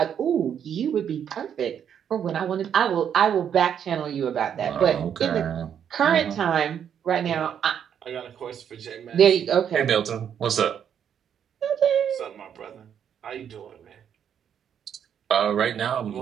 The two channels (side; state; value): left; quieter; 8.6 dB